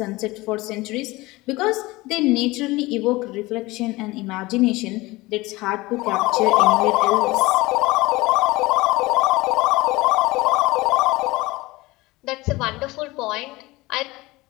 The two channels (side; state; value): right; quieter; 20.9 dB